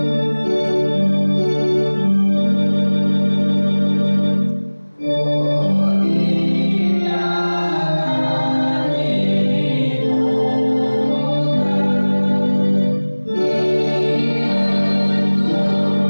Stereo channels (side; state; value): both; inverted; correlation -1.00